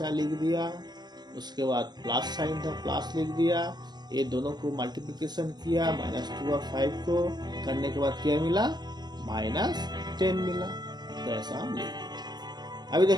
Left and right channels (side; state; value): left; late; 0.20 ms